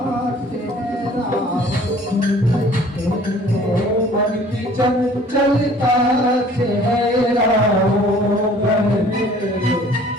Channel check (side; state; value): both; normal; correlation 0.52